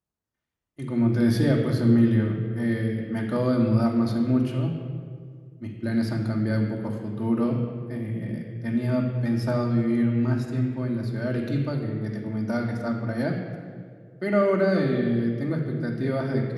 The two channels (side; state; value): both; identical; correlation 1.00